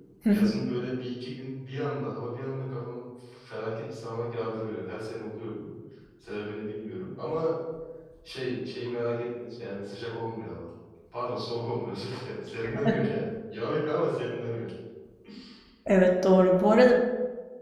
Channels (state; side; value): identical; both; correlation 1.00